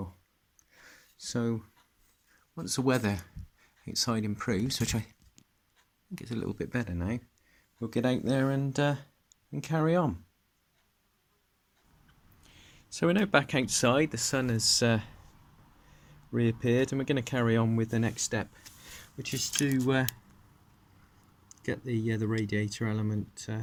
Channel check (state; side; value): identical; both; correlation 1.00